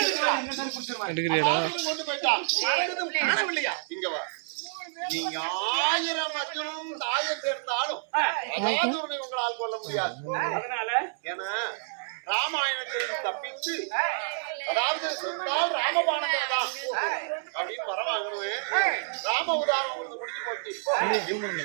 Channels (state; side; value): silent; left; 59 dB below the other